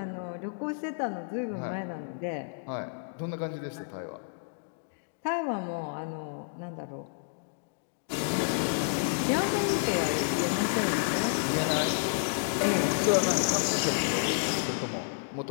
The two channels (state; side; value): silent; right; digital silence